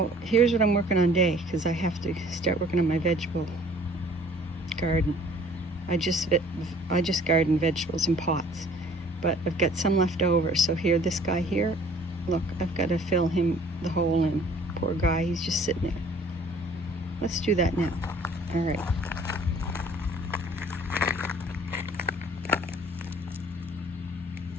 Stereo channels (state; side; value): normal; both; correlation 0.53